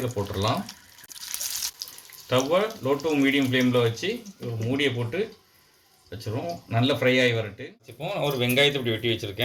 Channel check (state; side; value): identical; both; correlation 1.00